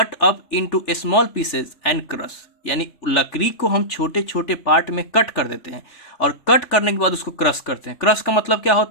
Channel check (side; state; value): right; late; 3.4 ms